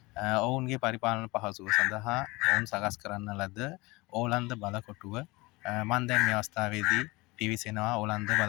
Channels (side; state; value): right; quieter; 23.1 dB